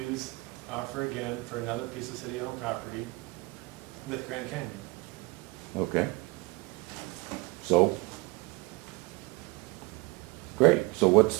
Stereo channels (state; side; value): quieter; left; 23.7 dB